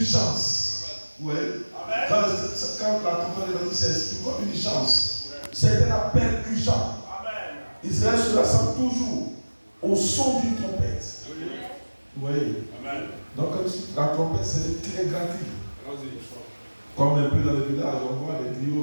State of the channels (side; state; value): both; inverted; correlation -1.00